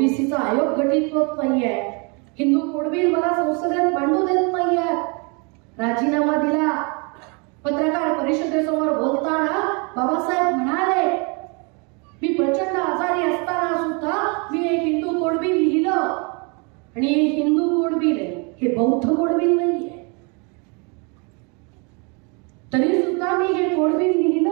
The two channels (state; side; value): quieter; left; 32.8 dB